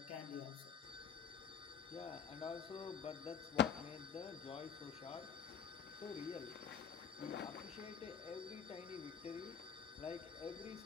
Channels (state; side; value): quieter; right; 7.3 dB